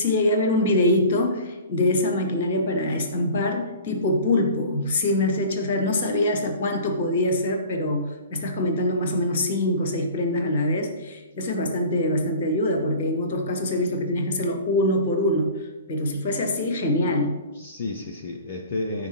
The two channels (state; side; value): inverted; both; correlation -0.41